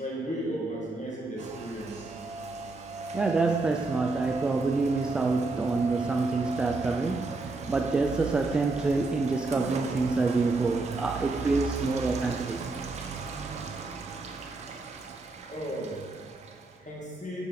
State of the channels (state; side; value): quieter; left; 3.3 dB